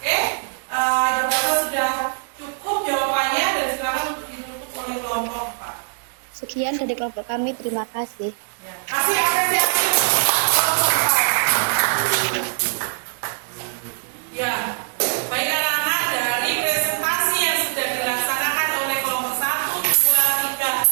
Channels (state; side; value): silent; left; digital silence